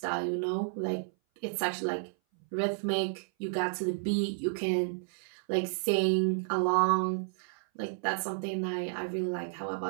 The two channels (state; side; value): silent; left; 57 dB below the other